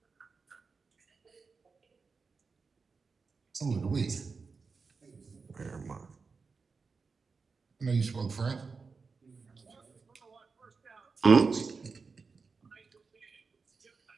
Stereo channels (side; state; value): left; quieter; 4.7 dB